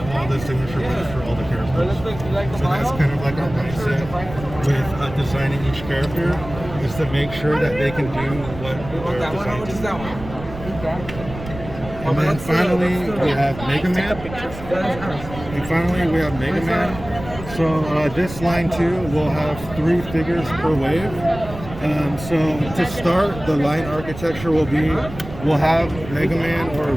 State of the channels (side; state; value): right; noise; rumble, 12 dB below the sound